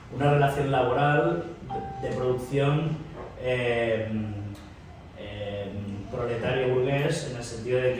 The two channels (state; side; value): identical; both; correlation 1.00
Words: una relación laboral de producción proletario burgués, en el sentido